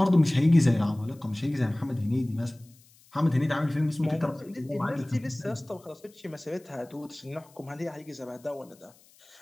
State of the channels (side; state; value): left; noise; hiss, 28 dB below the sound